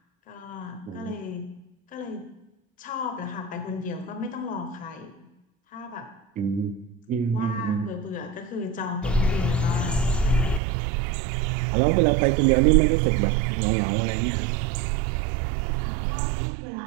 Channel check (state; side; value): drops out; left; at 10.6 s